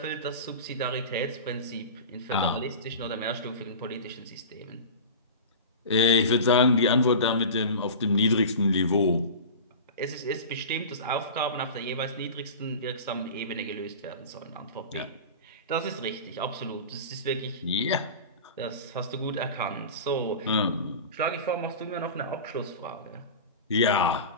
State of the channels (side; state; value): both; inverted; correlation -0.32